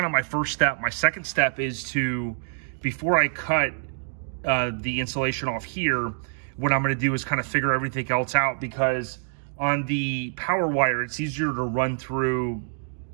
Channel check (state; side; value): silent; left; digital silence